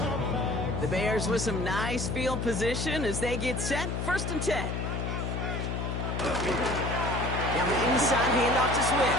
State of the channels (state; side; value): noise; left; hum, 2 dB below the sound